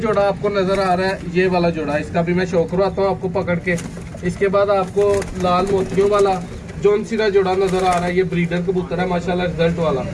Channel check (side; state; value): both; identical; correlation 1.00